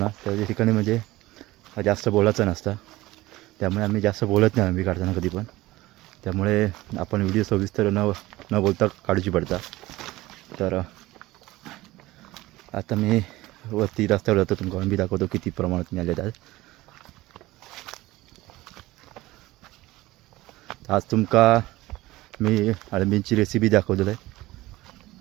त्या ठिकाणी म्हणजे जास्त बोलायचं नसतं. त्यामुळे आम्ही जास्त बोलत नाही अळंबी काढताना कधी पण. त्यामुळे आपण व्हिडिओ सविस्तर न बोलता काढूची पडता. तर आता मी वरती रस्त्यावर जातो, तुमका अळंबी दाखवतो किती प्रमाणात मिळाले आहेत. आज तुमका मी अळंबींची रेसिपी दाखवलेलं आहे.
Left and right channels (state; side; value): quieter; left; 18.4 dB